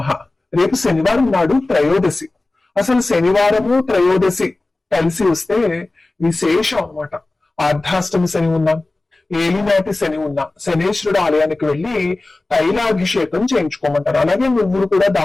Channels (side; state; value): right; quieter; 3.0 dB